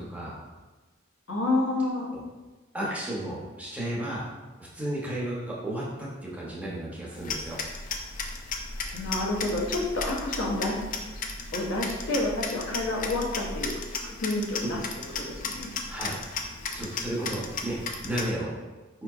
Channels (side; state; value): both; normal; correlation 0.43